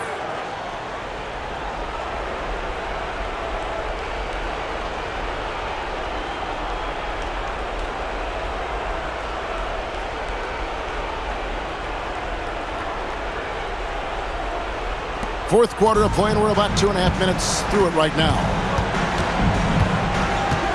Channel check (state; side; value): identical; both; correlation 1.00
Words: Fourth quarter of play, and we're about 2.5 minutes through it right now.